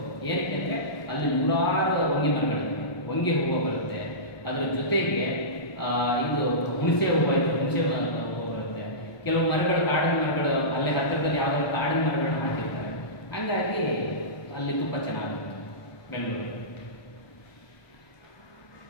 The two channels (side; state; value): right; late; 1.2 ms